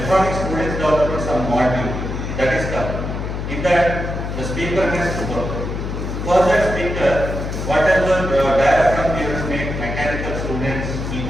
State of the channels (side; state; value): left; noise; hum, 5 dB below the sound